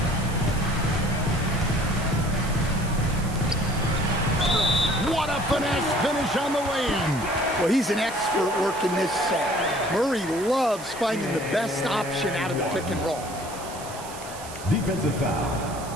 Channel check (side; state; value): right; noise; hiss, 15 dB below the sound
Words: What a finesse finish on the way-in. Well, he's an expert working this set. Murray loves finding the best option out of the pick and roll. Defensive foul.